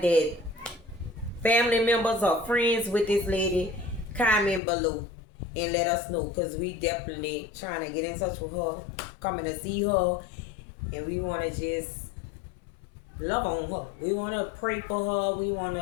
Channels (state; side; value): drops out; right; at 4.6 s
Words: family members or friends with this lady, comment below and let us know, because we definitely trying to get in touch with her, coming to see her, and we want to just love on her. We want to pray for her. We want